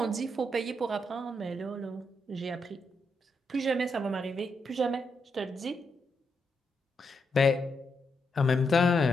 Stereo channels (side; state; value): both; normal; correlation 0.81